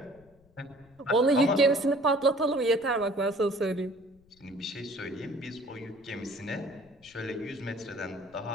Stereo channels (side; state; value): left; noise; rumble, 30 dB below the sound